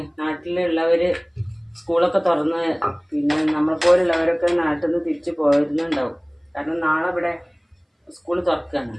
നാട്ടിലുള്ളവർ സ്കൂളൊക്കെ തുറന്ന് പിന്നെ നമ്മളെപ്പോലുള്ളവരൊക്കെ നാട്ടിൽ നിന്ന് തിരിച്ച് പോയിരുന്നുണ്ടാവും. കാരണം നാളെ ഇവിടെ സ്കൂൾ തുറക്കുകയാണ്.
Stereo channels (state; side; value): identical; both; correlation 1.00